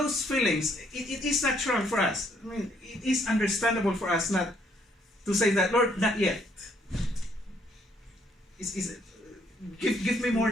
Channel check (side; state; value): both; normal; correlation 0.68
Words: feelings, it is natural for us. I mean, it is understandable for us not to say that, Lord, not yet. Give me more